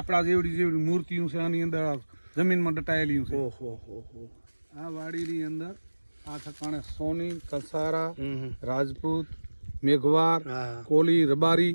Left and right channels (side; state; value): both; inverted; correlation -1.00